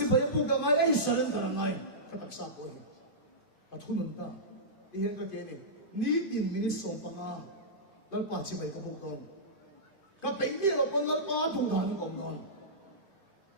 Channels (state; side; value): late; right; 2.5 ms